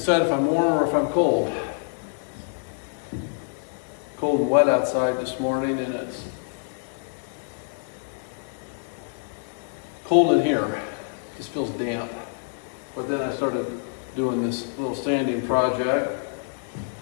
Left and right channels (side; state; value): right; silent; 61 dB below the other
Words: if I'm warm or if I'm cold. Cold and wet outside this morning, and it's cold in here. It just feels damp. But then I started doing this little sanding project,